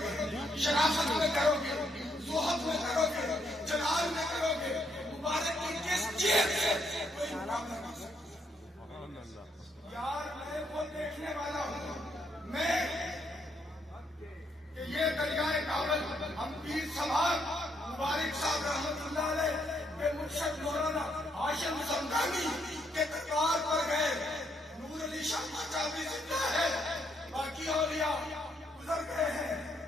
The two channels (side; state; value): both; normal; correlation 0.75